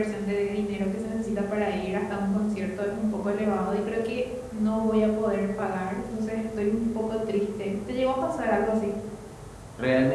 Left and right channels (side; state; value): both; identical; correlation 1.00